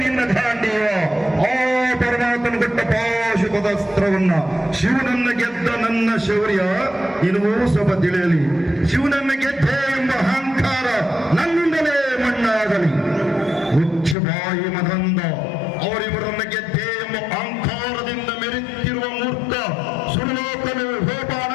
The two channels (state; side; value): drops out; right; at 14.2 s